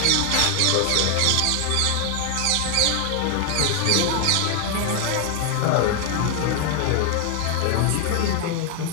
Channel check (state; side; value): different; both; correlation 0.00